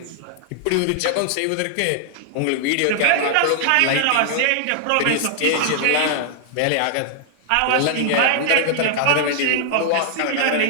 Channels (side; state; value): both; different; correlation -0.01